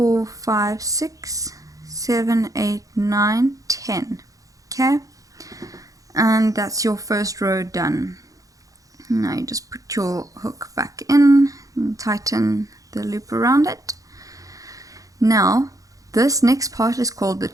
5, 6, 7, 8, 9, 10. Okay, and that's your first row done. Now you just put your hook back in and tighten the loop around it. Now this next part is called the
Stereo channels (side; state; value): left; late; 0.17 ms